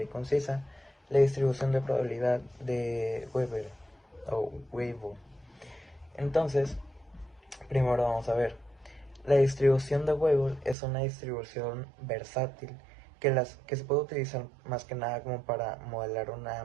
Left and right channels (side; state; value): left; drops out; at 10.8 s